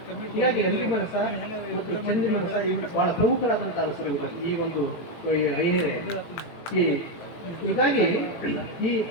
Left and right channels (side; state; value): right; late; 18 ms